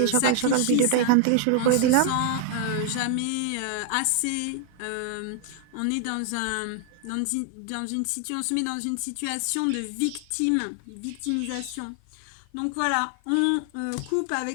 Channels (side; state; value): both; different; correlation 0.00